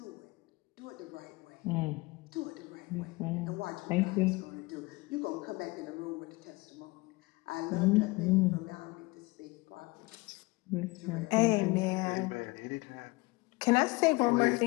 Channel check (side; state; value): right; quieter; 23.5 dB